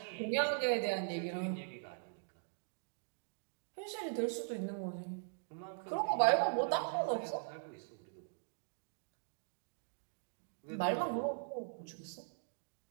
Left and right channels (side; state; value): left; silent; digital silence